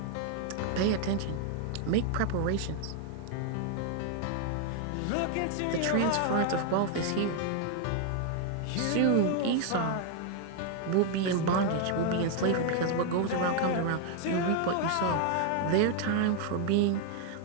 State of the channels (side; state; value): both; different; correlation 0.00